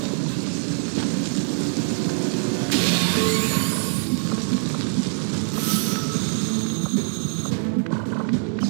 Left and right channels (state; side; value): silent; left; 63 dB below the other